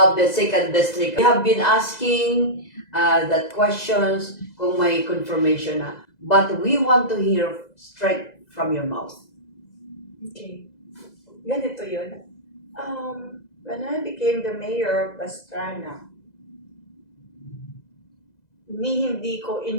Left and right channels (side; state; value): right; late; 2.0 ms